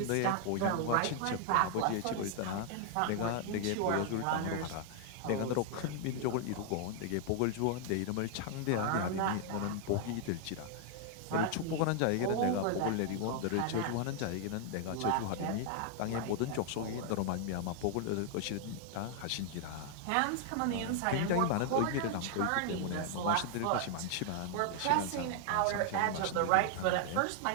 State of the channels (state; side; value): different; both; correlation 0.00